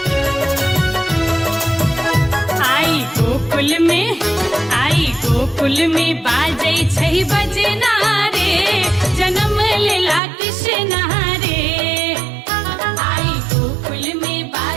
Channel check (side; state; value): left; drops out; at 10.2 s